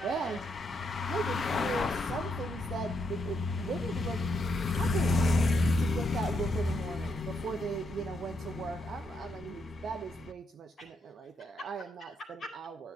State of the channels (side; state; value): both; normal; correlation 0.78